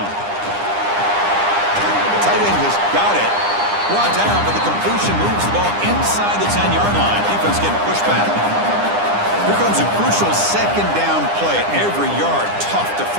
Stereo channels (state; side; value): late; left; 9.9 ms